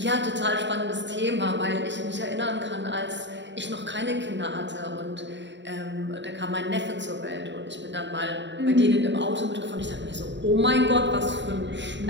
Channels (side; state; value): left; late; 0.52 ms